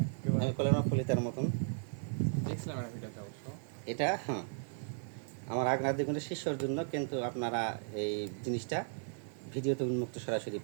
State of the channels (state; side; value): silent; left; digital silence